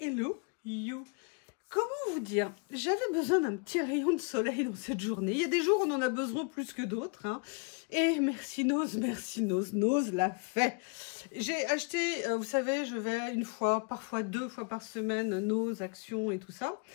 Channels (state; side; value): quieter; right; 33.6 dB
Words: you. Comment vous dire? J'avais besoin d'un petit rayon de soleil dans cette journée. Il y a des jours où on en a besoin plus que d'autres. Hein. Et merci Nose l'a fait. J'ai acheté, vous savez, je vais une fois, parfois 2 fois par semaine, Nose, Action et tout ça.